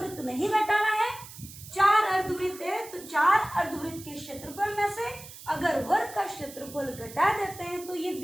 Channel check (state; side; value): noise; right; hiss, 16 dB below the sound